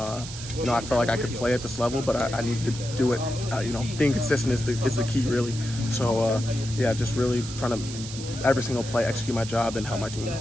felt like I could play at this level, but I needed to do it. Being consistent is the key, really. So, just really trying to every single play execute my job and help my team.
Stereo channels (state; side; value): noise; right; hiss, 11 dB below the sound